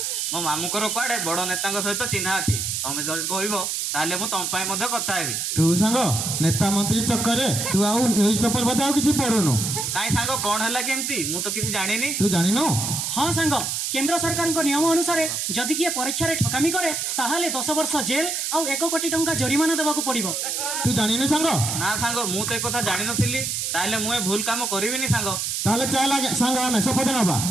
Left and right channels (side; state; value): right; noise; hiss, 1 dB below the sound